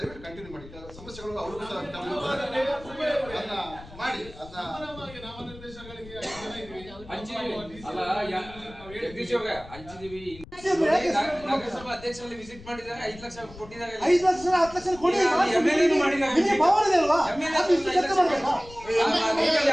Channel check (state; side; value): noise; left; rumble, 18 dB below the sound